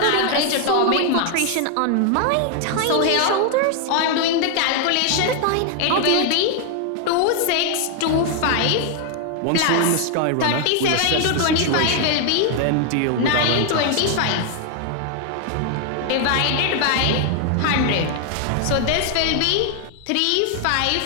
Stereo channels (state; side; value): different; both; correlation 0.00